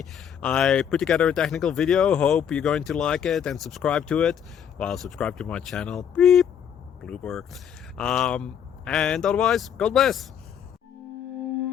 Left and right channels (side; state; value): right; quieter; 8.5 dB